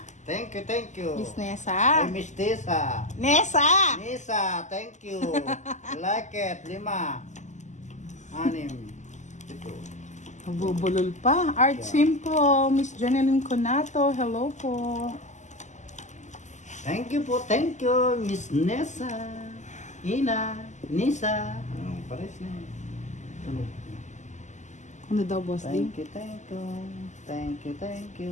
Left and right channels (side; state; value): right; late; 0.34 ms